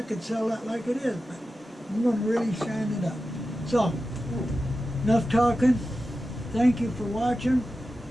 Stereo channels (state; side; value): normal; both; correlation 0.93